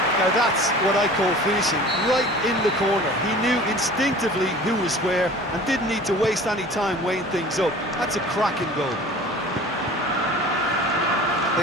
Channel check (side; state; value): both; normal; correlation 0.43